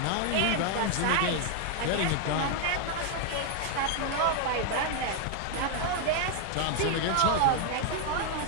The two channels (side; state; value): both; different; correlation 0.00